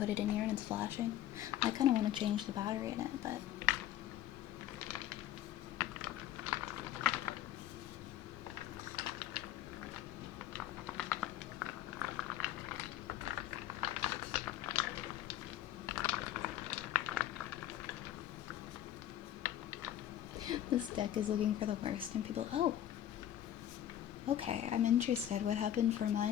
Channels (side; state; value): right; quieter; 11.9 dB